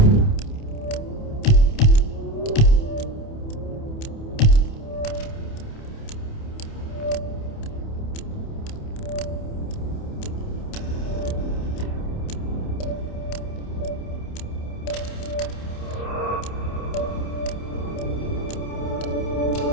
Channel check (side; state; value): right; late; 28 ms